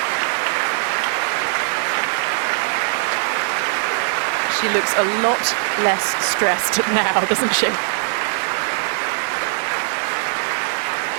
She looks a lot less stressed now, doesn't she?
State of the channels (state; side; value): silent; left; digital silence